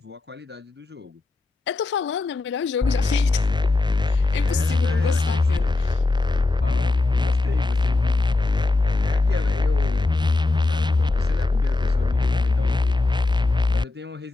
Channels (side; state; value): right; quieter; 3.2 dB